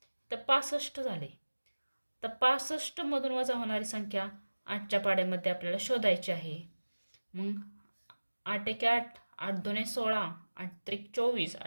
तर 65 झाले. तर 65 मधून वजा होणारी संख्या 8च्या पाड्यामध्ये आपल्याला शोधायची आहे. मग 8 एके 8, 8 दुने 16, 8 त्रिक 24,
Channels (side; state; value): both; inverted; correlation -1.00